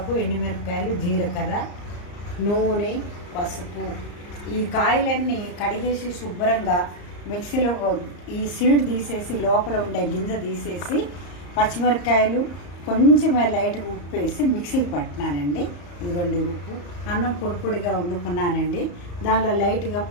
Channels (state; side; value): late; right; 34 ms